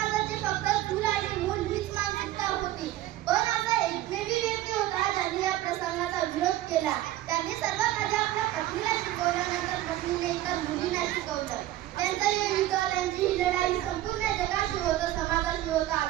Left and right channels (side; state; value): left; quieter; 14.6 dB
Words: फक्त चूल आणि मूल हीच मानसिकता होती. पण असा एकमेवी व्यक्ती होता ज्यांनी या प्रसंगाचा विरोध केला. त्यांनी सर्वात आधी आपल्या पत्नीला शिकवल्यानंतर पत्नीने इतर मुलींना शिकवलं. त्यांचं हे युद्ध, त्यांची ही लढाई संपूर्ण जगाशी होतं, समाजाशी होतं,